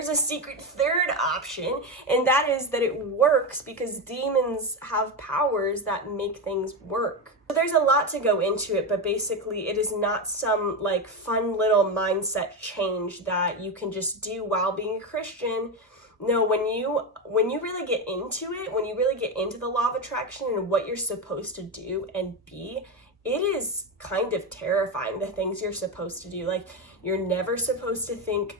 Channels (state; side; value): normal; both; correlation 0.14